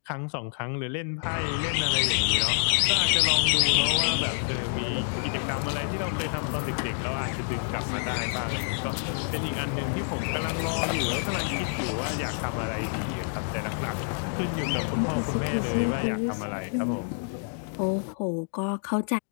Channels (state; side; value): silent; right; digital silence